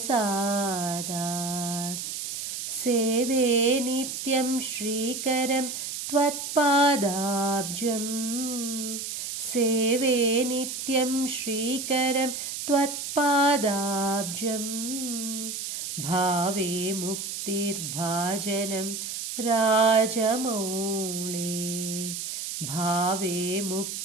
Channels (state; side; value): noise; right; hiss, 5 dB below the sound